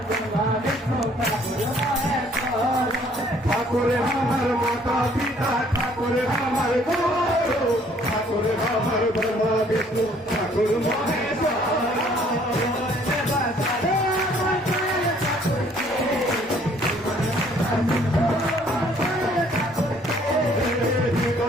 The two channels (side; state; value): both; normal; correlation 0.60